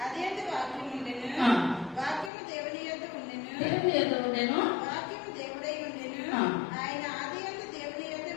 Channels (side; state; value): right; drops out; at 2.3 s